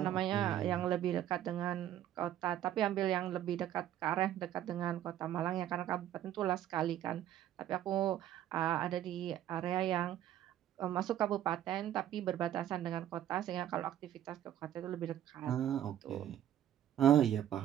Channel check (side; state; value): left; quieter; 11.6 dB